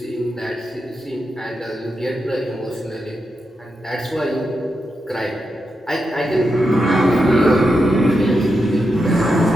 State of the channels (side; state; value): both; normal; correlation 0.87